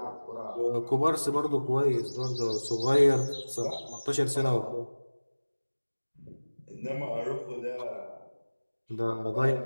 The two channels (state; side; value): inverted; both; correlation -1.00